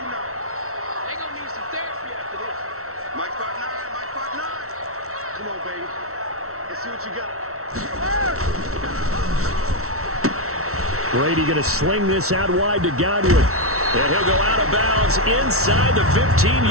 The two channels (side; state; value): left; late; 0.63 ms